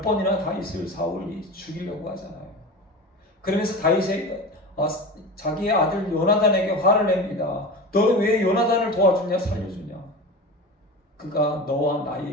번이나 다윗을 사울이 죽이려고 하잖아요. 그러면서 다윗이 자기의 아들 요나단에게 화를 냅니다. 너는 왜 요나단을 도와주냐, 살려주냐? 그가 너와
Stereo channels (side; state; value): both; normal; correlation 0.30